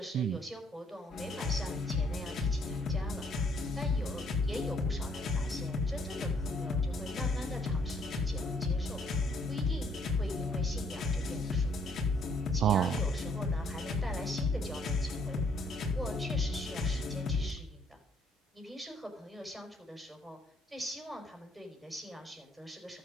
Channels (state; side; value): normal; both; correlation 0.66